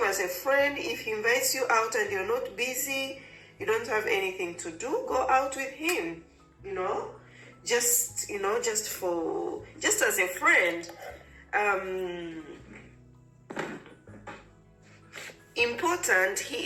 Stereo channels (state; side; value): identical; both; correlation 1.00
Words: as a friend. If he invites you out and you're not busy, you don't have anything to do, go out with him, just as a friend. Important,